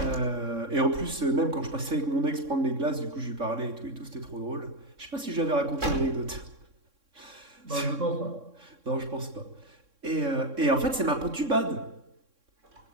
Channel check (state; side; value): late; left; 3.6 ms